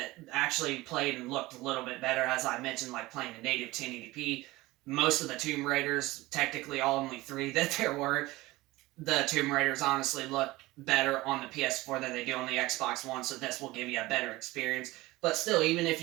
actually played and looked a little bit better, as I mentioned, like playing a native 1080p. Most of the Tomb Raiders, technically only 3 that there were, the Tomb Raiders honestly look better on the PS4 than they do on the Xbox One, so this will give you a better experience. But still, even if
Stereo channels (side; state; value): left; quieter; 19.6 dB